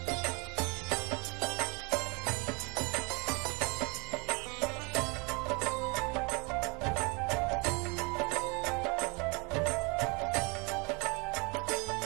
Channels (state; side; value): quieter; left; 30.1 dB